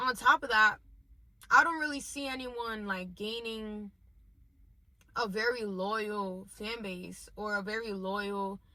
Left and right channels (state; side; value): identical; both; correlation 1.00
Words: top of that, I don't really see anyone, like, gaining a very loyal fan base or a very loyal